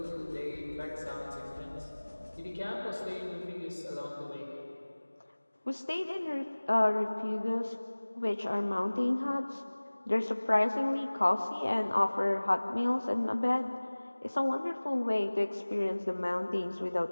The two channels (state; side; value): inverted; both; correlation -1.00